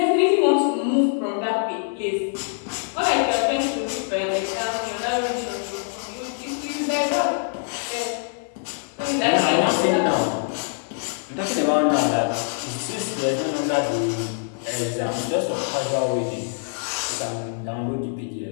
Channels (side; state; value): right; silent; digital silence